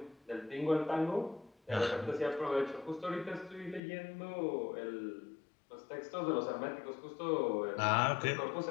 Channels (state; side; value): drops out; right; at 3.8 s